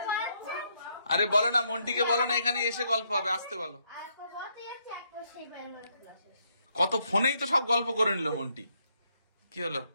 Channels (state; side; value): inverted; both; correlation -0.75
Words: পাচ্ছে। আরে বলো না, মন্টিকে বলো না এখানে এসে গল্প হবে, আসতে বলো। আর কবতে যাচ্ছে একবার সেই পায়ের মধ্যে ক্লাসে। কত ফোনেই তো সব গল্প করে নিল মন্টি। কি হলো?